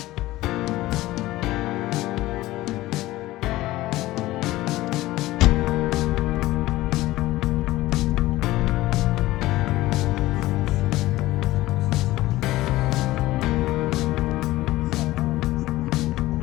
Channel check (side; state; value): right; quieter; 17.2 dB